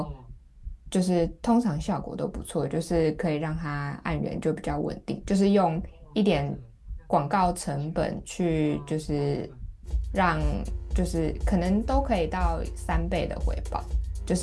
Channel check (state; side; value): identical; both; correlation 1.00